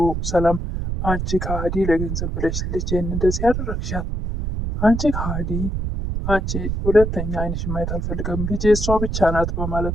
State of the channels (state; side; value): noise; right; rumble, 2 dB below the sound